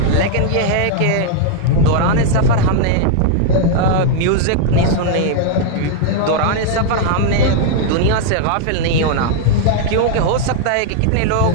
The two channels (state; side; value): different; both; correlation 0.00